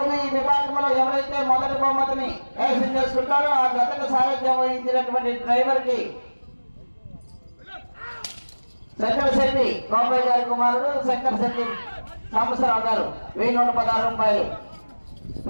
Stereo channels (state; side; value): inverted; both; correlation -1.00